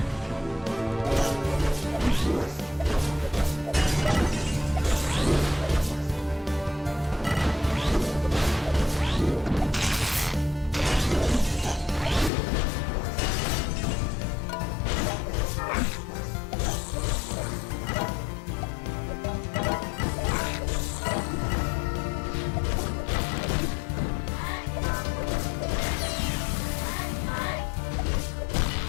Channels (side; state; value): right; drops out; at 12.3 s